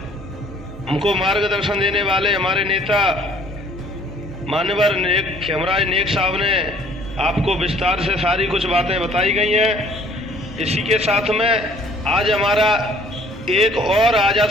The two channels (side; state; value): both; normal; correlation 0.57